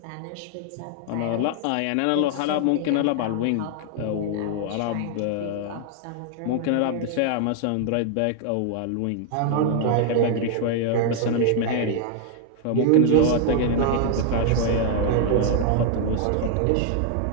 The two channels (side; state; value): both; different; correlation 0.00